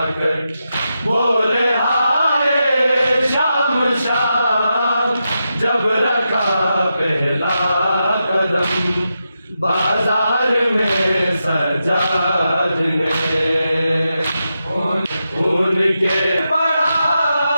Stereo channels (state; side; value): inverted; both; correlation -0.88